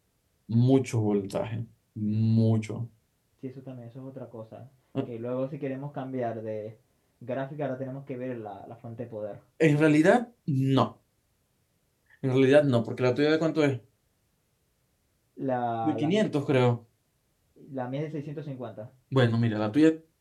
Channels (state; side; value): identical; both; correlation 1.00